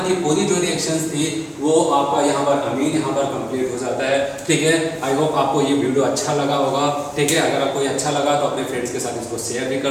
की पूरी जो रिएक्शंस थी वो आपका यहाँ पर अमीन यहाँ पर कंप्लीट हो जाता है, ठीक है। आई होप आपको ये वीडियो अच्छा लगा होगा, ठीक है। अगर आपको ये अच्छा लगा तो अपने फ्रेंड्स के साथ इसको शेयर भी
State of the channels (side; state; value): both; identical; correlation 1.00